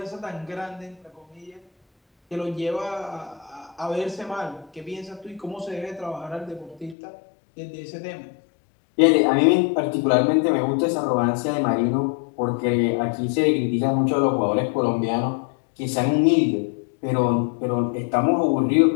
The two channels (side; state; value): right; drops out; at 7.0 s